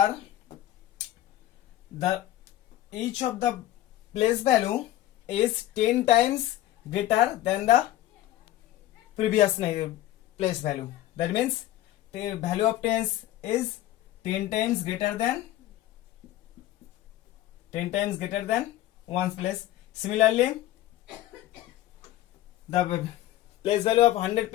each of the place value is 10 times greater than the previous place value. That means the value of tens is 10 times greater than 1's place. Similarly, the place value of 100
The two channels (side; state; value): right; quieter; 14.4 dB